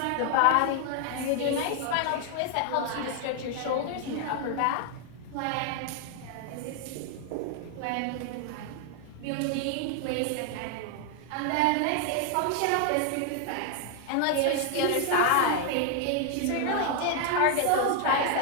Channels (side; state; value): both; different; correlation 0.00